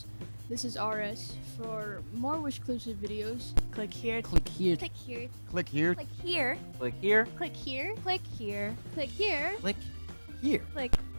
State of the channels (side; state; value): both; inverted; correlation -1.00